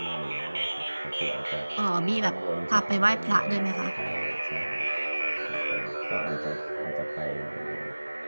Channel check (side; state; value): both; inverted; correlation -1.00